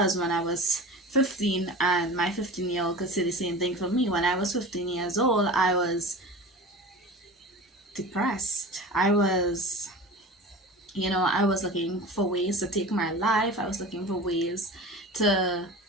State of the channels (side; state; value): both; normal; correlation 0.34